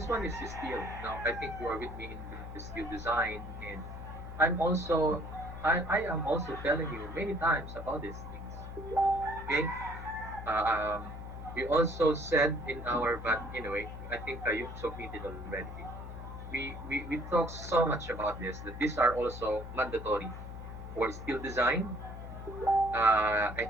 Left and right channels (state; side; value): noise; left; hum, 10 dB below the sound